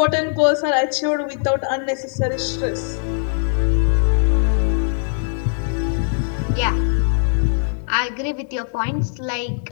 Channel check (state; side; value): silent; right; 66 dB below the other